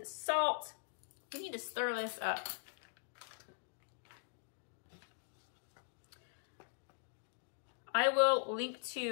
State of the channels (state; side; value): silent; right; digital silence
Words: the salt. We need to stir this up. I will link